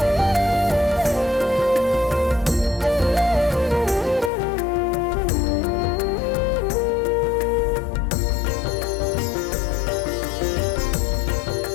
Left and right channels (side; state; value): right; drops out; at 4.3 s